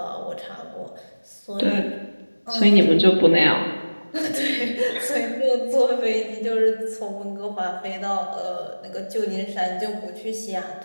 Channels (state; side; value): inverted; both; correlation -1.00